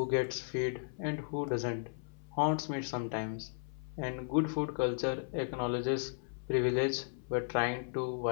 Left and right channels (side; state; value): right; silent; 54 dB below the other